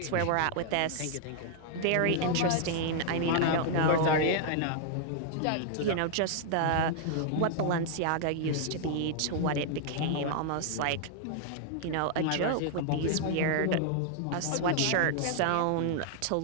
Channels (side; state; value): both; different; correlation -0.01